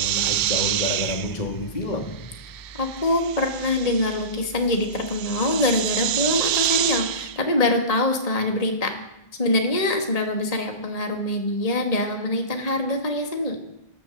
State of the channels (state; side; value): late; right; 1.8 ms